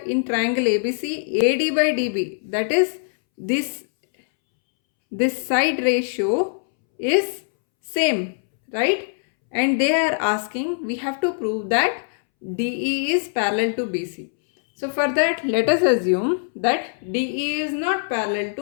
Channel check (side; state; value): right; silent; 64 dB below the other